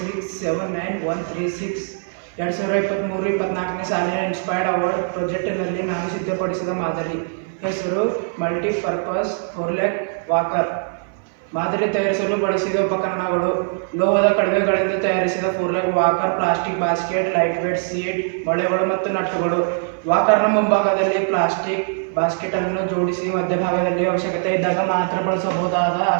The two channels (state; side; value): silent; left; 61 dB below the other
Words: 2023-24ನೇ ಸಾಲಿನ ಇನ್ಸ್ಪೈರ್ಡ್ ಅವಾರ್ಡ್ ಪ್ರಾಜೆಕ್ಟ್ನಲ್ಲಿ ನಾನು ಸಿದ್ಧಪಡಿಸಿದ ಮಾದರಿ ಹೆಸರು ಮಲ್ಟಿಪರ್ಪಸ್ ಫೋರ್ಲೆಗ್ ವಾಕರ್. ಮಾದರಿ ತಯಾರಿಸಲು ಬಳಸಿದ ಉಪಕರಣಗಳು: ಲೋಹದ ಕಡವೆಗಳಿಂದ ತಯಾರಿಸಿದ four leg walker, plastic basket, light weight seat, ಮೊಳೆಗಳು ಮತ್ತು ನಟ್ಟುಗಳು. ವಾಕರ್ನ ಮುಂಭಾಗದಲ್ಲಿ ಪ್ಲಾಸ್ಟಿಕ್ ಬಾಸ್ಕೆಟ್ ಅನ್ನು ಜೋಡಿಸಿ ಮಧ್ಯಭಾಗದಲ್ಲಿ ಅವಶ್ಯಕತೆ ಇದ್ದಾಗ ಮಾತ್ರ ಬಳಸಬಹುದಾದ